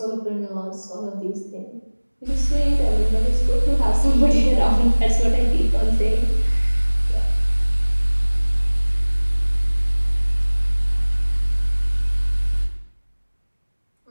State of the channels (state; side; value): inverted; both; correlation -1.00